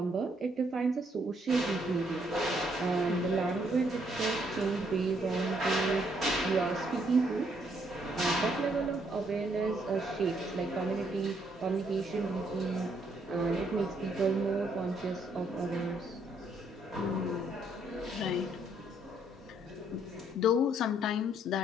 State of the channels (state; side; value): normal; both; correlation 0.70